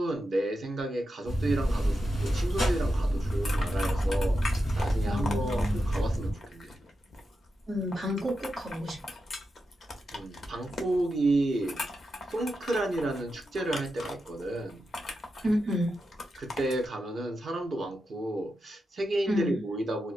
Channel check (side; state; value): both; normal; correlation 0.88